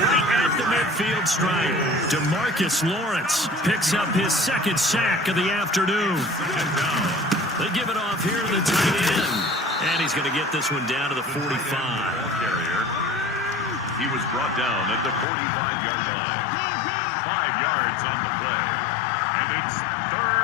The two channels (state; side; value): drops out; right; at 15.2 s